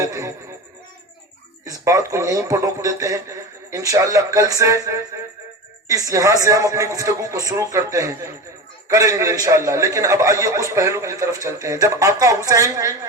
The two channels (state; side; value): normal; both; correlation 0.27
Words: ہیں، اس بات کو یہیں پر روک دیتے ہیں۔ انشاءاللہ کل سے یہاں سے ہم اپنی گفتگو کو شروع کریں گے انشاءاللہ، لیکن اب آئیے اس پہلو کی طرف چلتے ہیں۔ جب آقا حسین